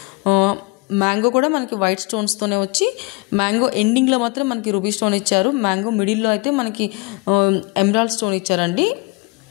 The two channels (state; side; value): quieter; right; 26.4 dB